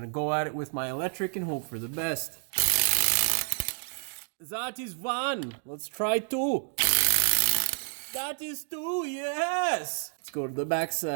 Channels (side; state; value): left; silent; 58 dB below the other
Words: go at it with my electric and hope for the best. That is one. Let's try two. That is two, yes. Let's go to the